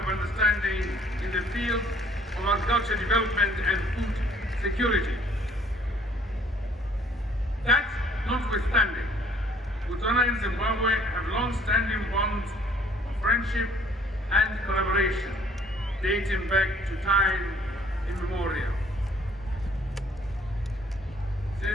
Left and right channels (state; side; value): normal; both; correlation 0.58